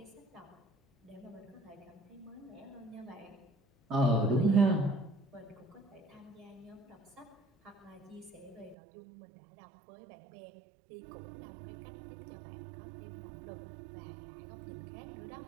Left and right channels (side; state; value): left; drops out; at 8.8 s